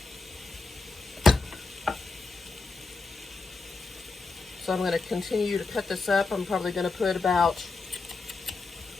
So I'm going to continue to cut this up. I'm probably going to put got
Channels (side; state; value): right; quieter; 3.9 dB